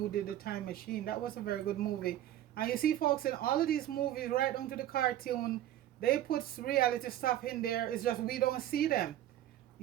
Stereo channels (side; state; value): left; quieter; 12.7 dB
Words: did The Time Machine. That was a very good movie. And you see, folks, in all of these movies, right down to the cartoon, they put reality stuff in there. It's just we don't see them,